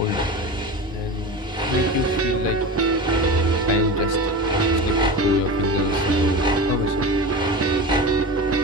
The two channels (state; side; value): normal; both; correlation 0.28